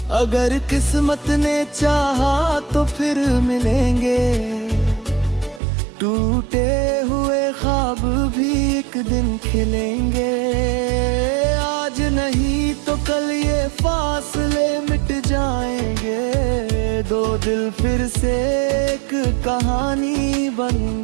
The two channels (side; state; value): left; drops out; at 5.6 s